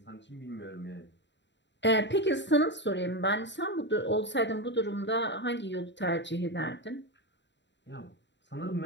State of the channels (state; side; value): late; right; 0.52 ms